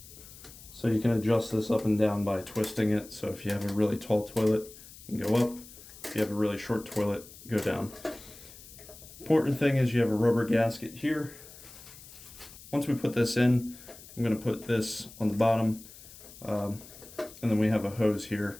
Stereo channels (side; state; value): left; noise; hiss, 18 dB below the sound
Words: So you can adjust this up and down by twisting it. So if you have a really tall toilet, you can go up. If you have a really short toilet, go down. Important thing is you have a rubber gasket here. Once we put this in, I'm going to put this on the bottom. And then we have a hose